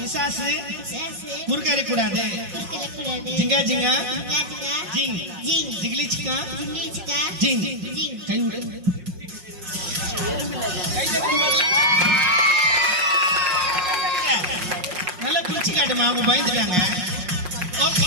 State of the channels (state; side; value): late; left; 5.5 ms